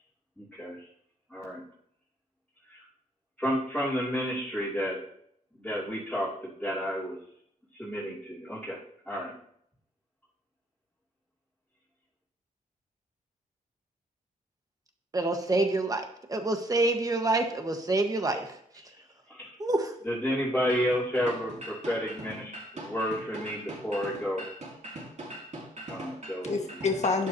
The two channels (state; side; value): normal; both; correlation 0.66